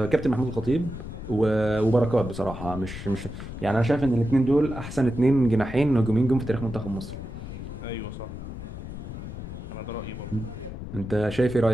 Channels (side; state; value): left; noise; rumble, 9 dB below the sound